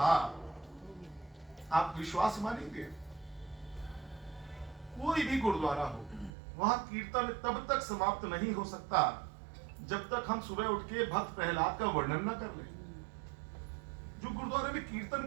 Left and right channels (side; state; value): left; drops out; at 6.3 s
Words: आप विश्वास मानेंगे, कोई भी गुरुद्वारा हो वहां कीर्तन तब तक समाप्त नहीं हो सकता जब तक हम सुबह उठ के भक्त प्रहलाद का वर्णन न कर लें। जो गुरुद्वारे में